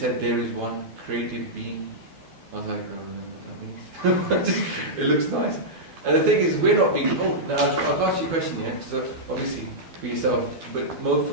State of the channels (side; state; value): left; late; 12 ms